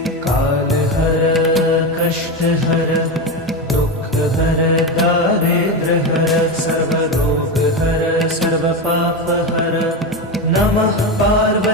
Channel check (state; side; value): normal; both; correlation 0.16